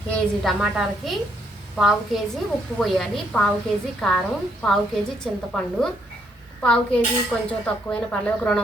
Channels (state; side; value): normal; both; correlation 0.72